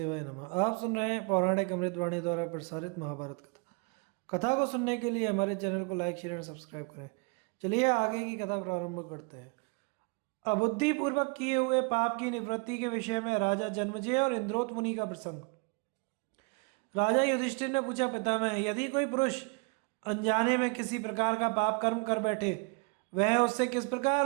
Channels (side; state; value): left; quieter; 31.7 dB